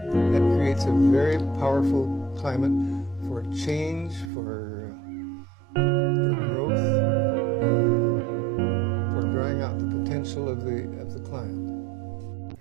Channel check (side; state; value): left; drops out; at 4.3 s